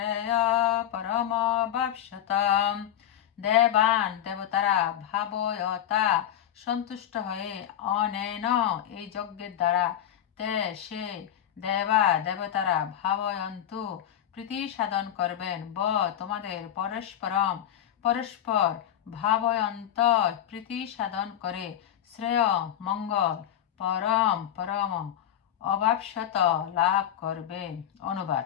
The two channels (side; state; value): right; quieter; 10.7 dB